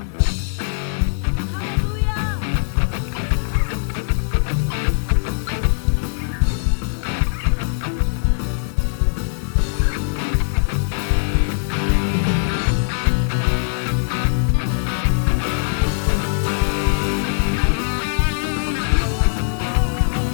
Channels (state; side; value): silent; right; digital silence